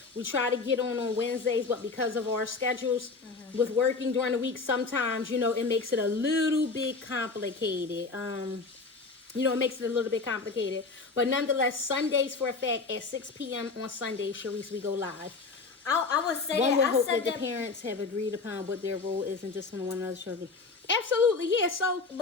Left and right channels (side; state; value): right; quieter; 4.2 dB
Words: We try to get on Wednesdays, but because of our schedules with working during the week, sometimes, it makes it a little bit complicated. It makes it a little bit complicated. But nonetheless, Sundays for a fact at 6 p.m. on Sunday, Sharice, we go live. I would say one that. would hope that the parents have agreed upon what their role is and just on one another's children. Absolutely, yeah. So,